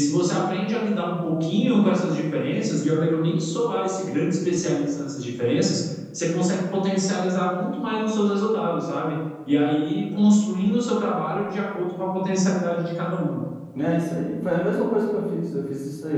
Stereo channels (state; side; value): identical; both; correlation 1.00